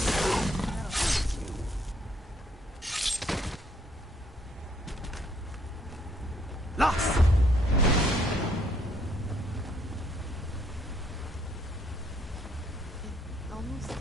Lost! It almost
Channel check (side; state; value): both; normal; correlation 0.68